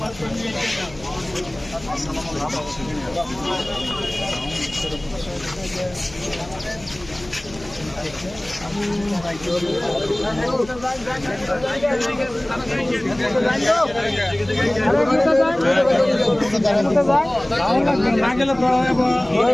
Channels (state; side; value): noise; left; hum, 20 dB below the sound